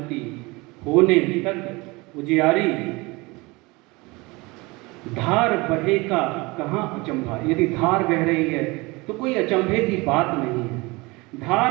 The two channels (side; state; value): left; quieter; 24.1 dB